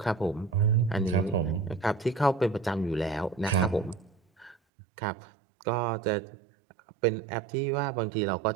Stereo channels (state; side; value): drops out; left; at 4.5 s